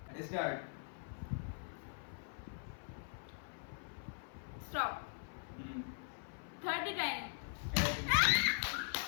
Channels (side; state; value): right; silent; 50 dB below the other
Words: Start. Stop. 30 times.